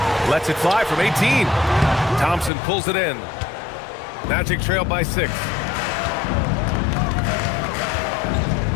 Lets it fly from 18. Thompson pulls it in. Magic trail by 6.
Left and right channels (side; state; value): right; drops out; at 2.5 s